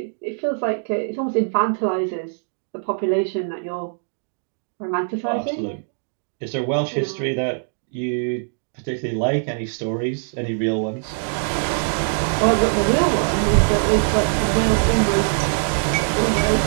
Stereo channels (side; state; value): left; silent; digital silence